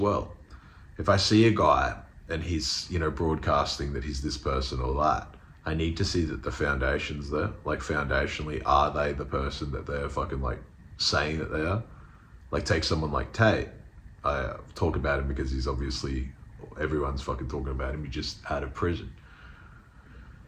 If I see a guy and he's, broadcasting that he's this person or that, I need to see that the foundation's there. Like, foundationally, are they the person that they're fucking, like, saying that they are? Like, take someone like Tate. I talk about him because he's obviously, everyone's fucking talking about him. He just out of prison.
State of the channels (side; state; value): both; identical; correlation 1.00